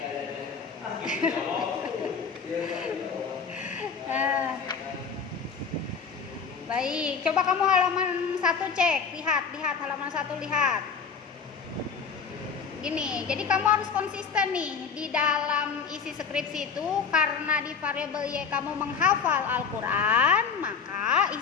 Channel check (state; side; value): quieter; right; 6.0 dB